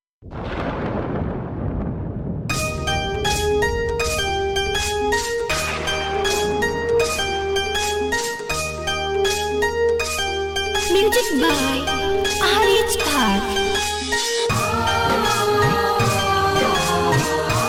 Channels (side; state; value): both; identical; correlation 1.00